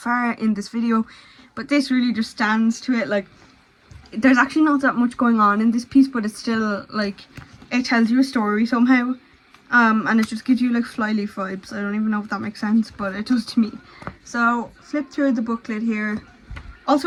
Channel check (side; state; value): both; identical; correlation 1.00